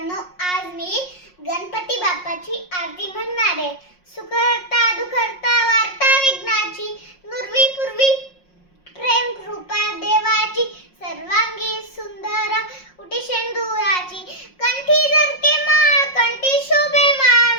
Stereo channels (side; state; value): right; late; 5.5 ms